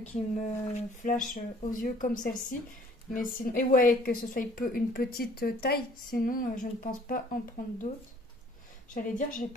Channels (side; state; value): both; normal; correlation 0.56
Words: qui me flash aux yeux comme celle-ci. Mais sinon, et ouais, que ce soit une petite taille, sinon je ne pense pas en prendre d'autres. J'allais dire, j'ai